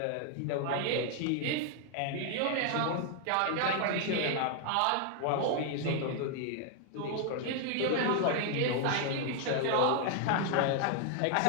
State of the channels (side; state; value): both; different; correlation 0.00